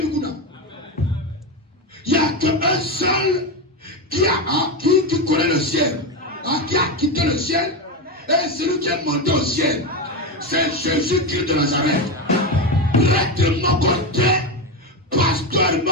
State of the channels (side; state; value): both; normal; correlation 0.14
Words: Il n'y a qu'un seul qui connaît le ciel, qui a quitté le ciel. Et celui qui est monté au ciel, c'est Jésus-Christ de Nazareth. Prêtre de mon côté, pasteur de